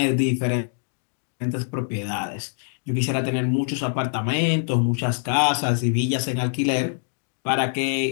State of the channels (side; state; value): right; silent; digital silence